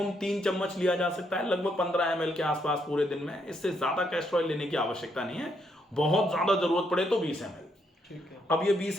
3 चम्मच लिया जा सकता है, लगभग 15 ml के आसपास पूरे दिन में। इससे ज्यादा कैस्टर ऑयल लेने की आवश्यकता नहीं है, बहुत ज्यादा जरूरत पड़े तो 20 ml। अब ये 20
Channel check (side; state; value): both; normal; correlation 0.75